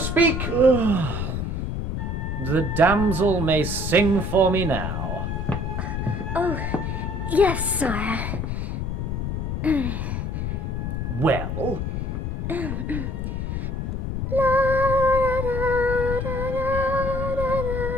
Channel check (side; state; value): left; noise; rumble, 2 dB below the sound